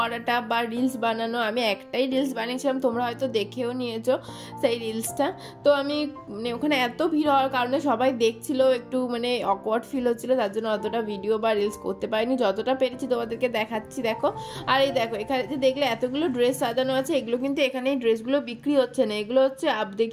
বা রিলস বানানো। আমি একটাই রিলস বানিয়েছিলাম, তোমরা হয়তো দেখেও নিয়েছো সেই রিলসটা। তো আমি মানে ওখানে এত ভিড় হওয়ার কারণে সবাই দেখছিল, একটু মানে অকওয়ার্ড ফিল হচ্ছিলো, তার জন্য অতটা ভিডিও বা রিলস করতে পারিনি, যতটা পেরেছি তোমাদেরকে দেখাচ্ছি। দেখো আর এই দেখো এখানে যে দেখলে এতগুলো ড্রেস সাজানো আছে, এগুলো কিন্তু এখানে এই ড্রেসগুলো বিক্রি হচ্ছে না, এগুলো হচ্ছে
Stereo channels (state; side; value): identical; both; correlation 1.00